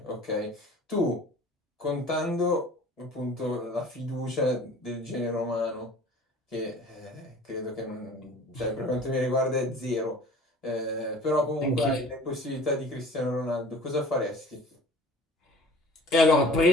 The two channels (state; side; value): normal; both; correlation 0.46